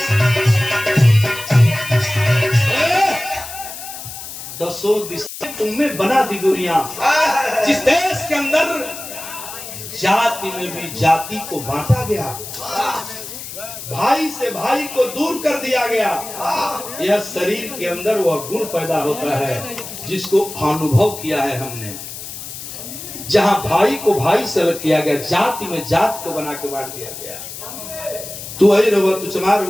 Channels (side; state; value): left; noise; hiss, 11 dB below the sound